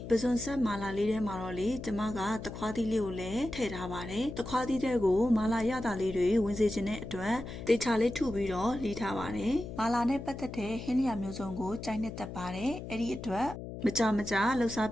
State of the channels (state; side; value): noise; left; hum, 9 dB below the sound